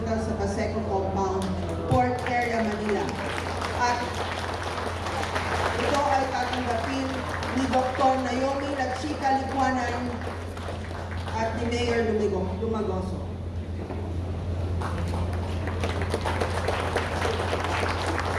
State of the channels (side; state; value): both; identical; correlation 1.00